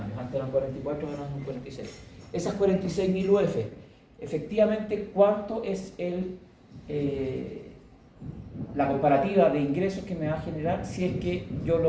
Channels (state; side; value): identical; both; correlation 1.00